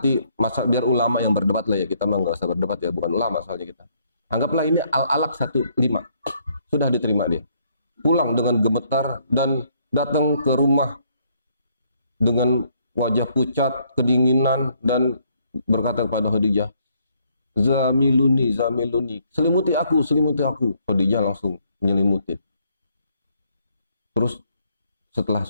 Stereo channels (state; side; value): inverted; both; correlation -0.69